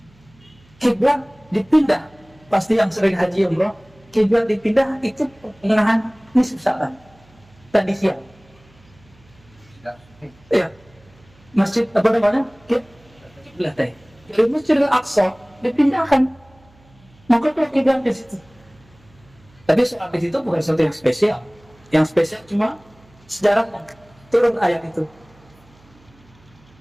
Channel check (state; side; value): noise; right; hum, 29 dB below the sound